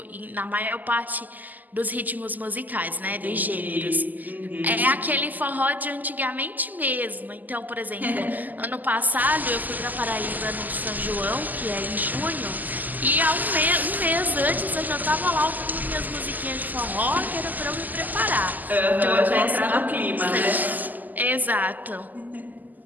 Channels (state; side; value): late; left; 0.083 ms